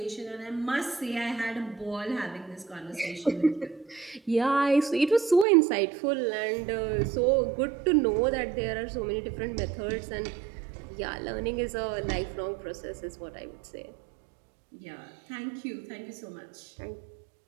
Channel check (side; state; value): left; drops out; at 5.5 s